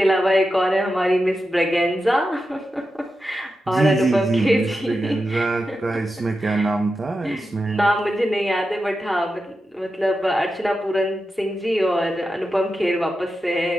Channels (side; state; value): both; normal; correlation 0.90